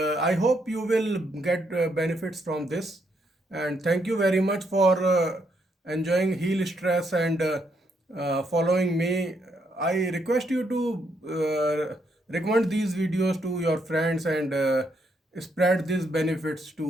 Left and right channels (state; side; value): normal; both; correlation 0.76